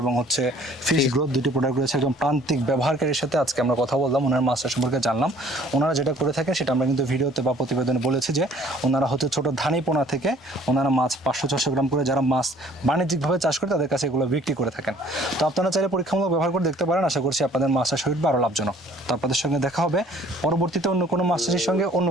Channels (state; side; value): normal; both; correlation 0.56